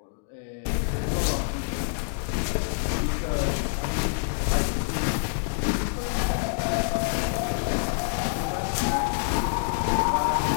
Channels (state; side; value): silent; right; digital silence